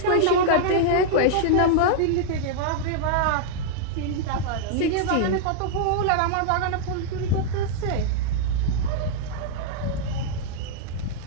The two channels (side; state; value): both; different; correlation -0.01